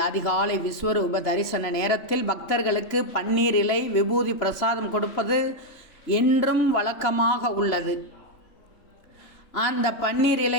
அதிகாலை விஸ்வரூப தரிசன நேரத்தில் பக்தர்களுக்கு பன்னீர் இலை விபூதி பிரசாதம் கொடுப்பது என்றும் வழக்கமாக உள்ளது. அந்த பன்னீர் இலை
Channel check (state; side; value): late; right; 3.0 ms